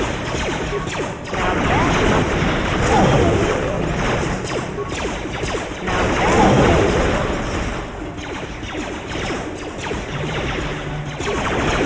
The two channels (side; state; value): both; identical; correlation 1.00